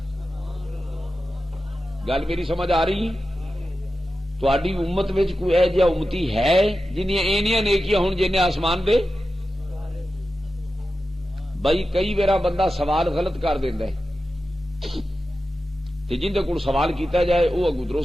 گل میری سمجھ آ رہی؟ تہاڈی امت وچ کوئی ایہو جہا امتی ہے جنیاں اینیاں نیکیاں ہون جنہیں آسمان دے؟ بھائی کئی ویرا بندہ سوال غلط کر دیندا ہے تے جندے کول سوال کیتا جائے وہ اگوں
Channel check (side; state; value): both; normal; correlation 0.92